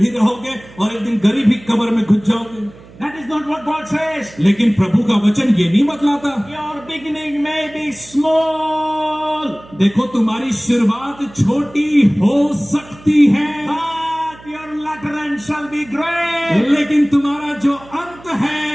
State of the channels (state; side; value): noise; right; hum, 22 dB below the sound